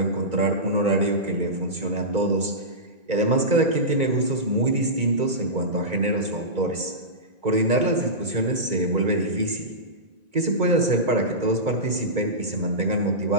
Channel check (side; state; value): left; late; 2.2 ms